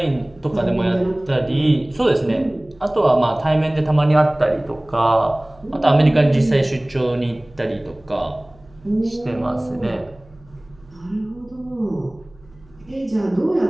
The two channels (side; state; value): right; noise; hum, 27 dB below the sound